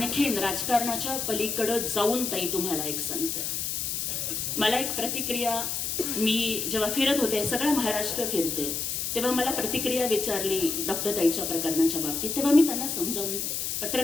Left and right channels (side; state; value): left; noise; hiss, 2 dB below the sound